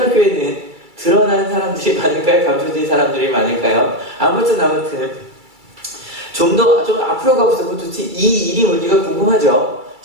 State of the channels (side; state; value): left; late; 2.3 ms